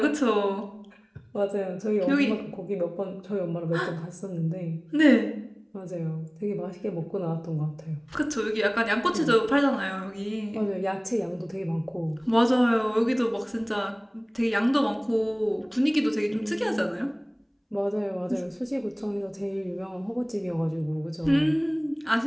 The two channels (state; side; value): identical; both; correlation 1.00